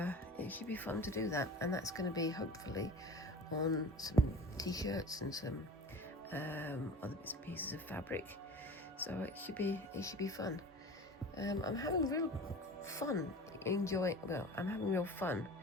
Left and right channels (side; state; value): both; normal; correlation 0.38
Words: it should be fun to do that, and that's going to be hopefully on some t-shirts and some other bits and pieces of fabric. So it should be fun. I'm having real fun I'm having real fun